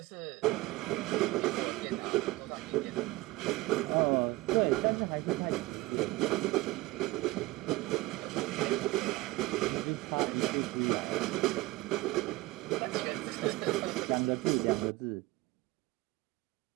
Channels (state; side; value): quieter; left; 20.5 dB